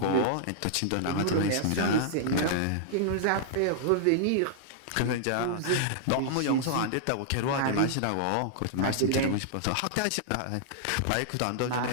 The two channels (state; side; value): different; both; correlation -0.01